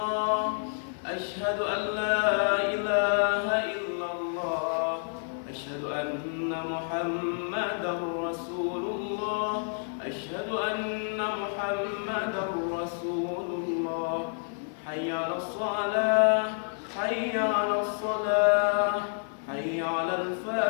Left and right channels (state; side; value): silent; right; digital silence